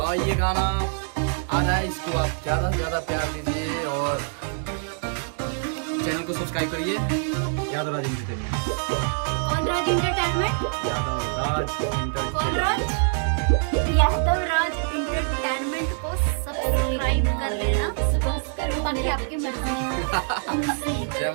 ये गाना आ रहा है, इसको आप ज्यादा से ज्यादा प्यार दीजिए और चैनल को सब्सक्राइब करिए। यादव राज एंटरटेनमेंट। कौन राज एंटरटेनमेंट? यादव राज कौन राज? यादव राज एंटरटेनमेंट को सब्सक्राइब कर लेना, बाकी आपकी मर्जी। जय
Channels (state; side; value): silent; left; 62 dB below the other